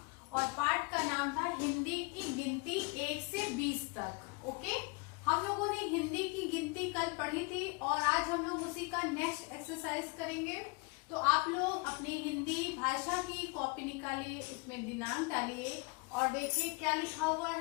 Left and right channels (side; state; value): right; quieter; 29.9 dB